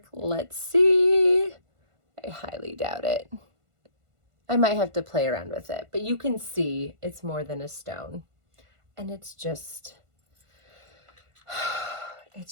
Let's see. I highly doubt it. I might have to play around with it, but you can see it's more than a stone. And it's just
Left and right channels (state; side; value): late; left; 1.5 ms